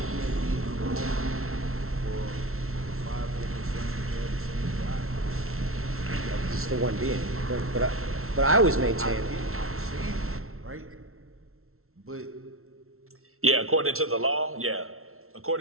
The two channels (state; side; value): late; left; 0.62 ms